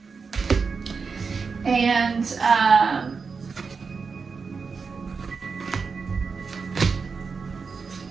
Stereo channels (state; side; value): quieter; left; 5.1 dB